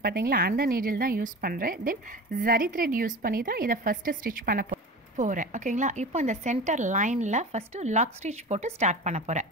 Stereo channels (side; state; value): both; normal; correlation 0.32